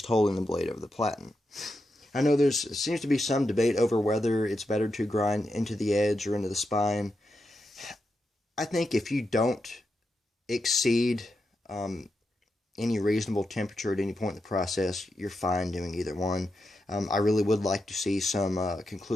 holding the blade over the platen. I know there seems to be some debate over whether it's better to grind into the edge or into the spine. I think if you don't exceed any reasonable temperature at any point in the process, you're fine doing either one. I really would like to see some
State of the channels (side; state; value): both; normal; correlation 0.86